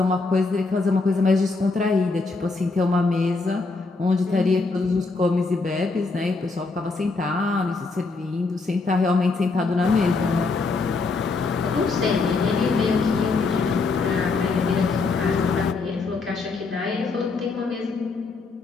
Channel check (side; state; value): right; quieter; 3.9 dB